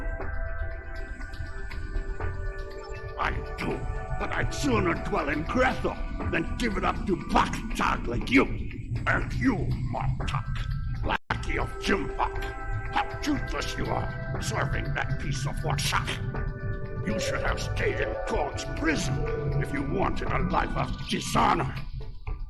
I do, but I'd sooner dwell in Grethel than give it up to Baktag like you. And you, Martok, lackey of Jimpak. How toothless you are, serving that piece of workshop. You should have stayed in God's prison if you wanted a life of dishonor.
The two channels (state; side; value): identical; both; correlation 1.00